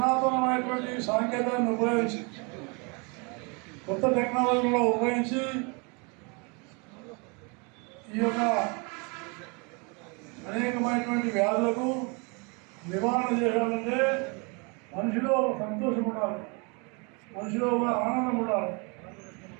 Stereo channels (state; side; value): quieter; left; 31.9 dB